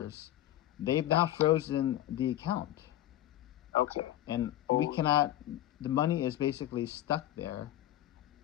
they've now frozen the account. Okay. And we cannot, the money is basically stuck there.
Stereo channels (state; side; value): quieter; right; 13.5 dB